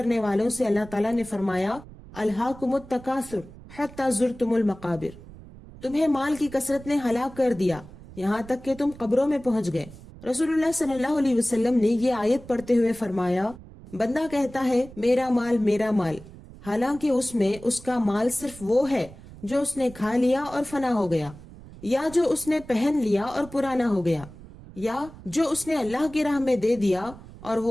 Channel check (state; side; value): noise; right; rumble, 18 dB below the sound